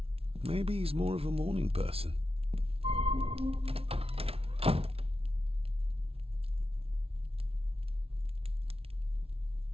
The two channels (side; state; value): left; late; 0.28 ms